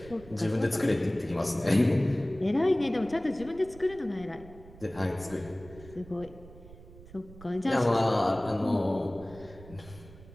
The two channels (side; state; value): right; noise; rumble, 19 dB below the sound